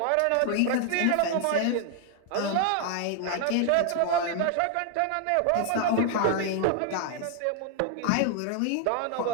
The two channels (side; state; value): both; different; correlation 0.00